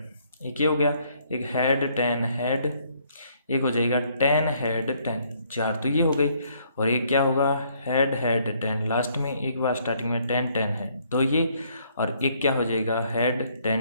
एक ये हो गया, एक हेड 10 हेड, एक हो जाएगा 10 हेड 10, 4 तो ये हो गई, और एक क्या होगा, हेड हेड 10, लास्ट में एक बार स्टार्टिंग में 10 10 है, तो ये, और एक क्या हो जाएगा, हेड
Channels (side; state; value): both; inverted; correlation -0.67